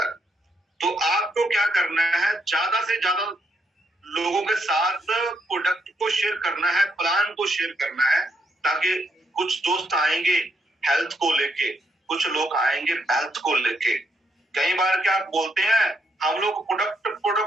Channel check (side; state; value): both; normal; correlation 0.77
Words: तो आपको क्या करना है, ज्यादा से ज्यादा लोगों के साथ प्रोडक्ट को शेयर करना है, प्लान को शेयर करना है, ताकि कुछ दोस्त आएंगे हेल्थ को लेके, कुछ लोग आएंगे हेल्थ को लेके। कई बार क्या आप बोलते हैं, हम लोग प्रोडक्ट